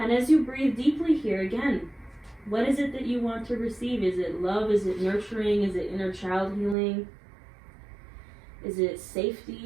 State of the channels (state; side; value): drops out; left; at 6.8 s